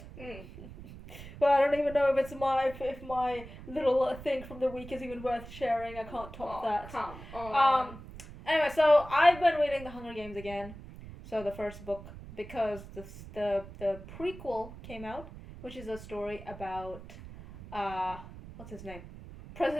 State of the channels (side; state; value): right; noise; rumble, 15 dB below the sound